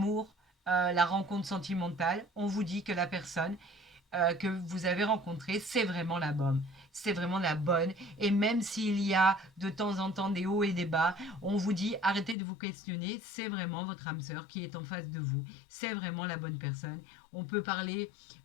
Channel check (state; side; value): drops out; right; at 12.4 s